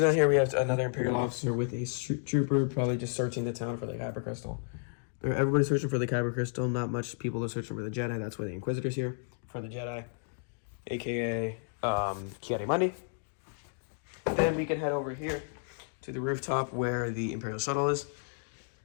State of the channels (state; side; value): silent; right; 56 dB below the other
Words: here we have another Imperial officer with a trooper, probably just searching the town for the Kyber Crystal. Everybody's searching for the Kyber Crystal. Not much people are searching for the Jedi. That's why the Inquisitor's here, for the Jedi, a.k.a. Kiadi-Mundi. Then we can head over here to the rooftop where the Imperial shuttle is.